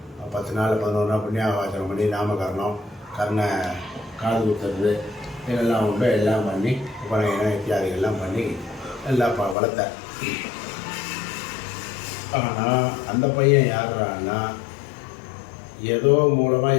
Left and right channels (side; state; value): right; drops out; at 9.6 s